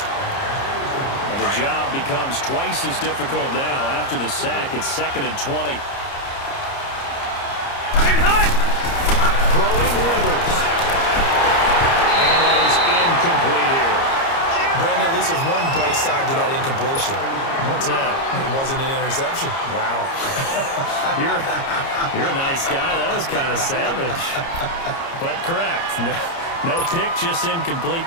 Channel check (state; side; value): late; right; 30 ms